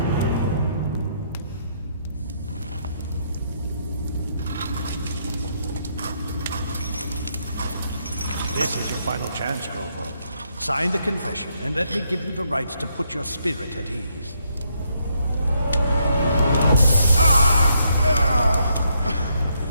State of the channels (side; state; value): both; inverted; correlation -0.75